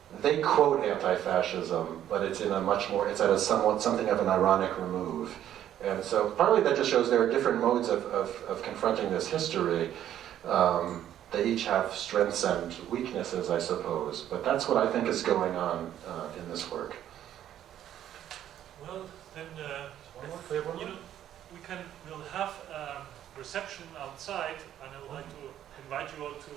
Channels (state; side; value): quieter; left; 11.2 dB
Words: they quote anti-fascism, but it's at something of an ironic remove. And so partly that just shows there are different modes of confronting this history. They each have strengths and weaknesses, I suppose, but that's what I think is going on in this work. Well, then we'll have a reception outside, and I would like to invite you all to